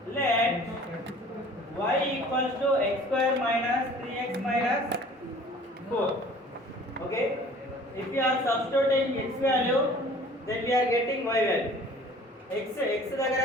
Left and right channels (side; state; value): both; normal; correlation 0.49